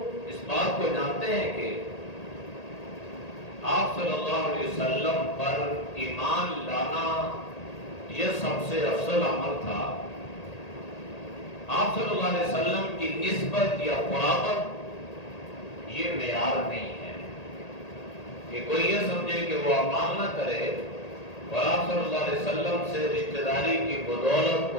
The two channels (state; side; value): late; right; 1.8 ms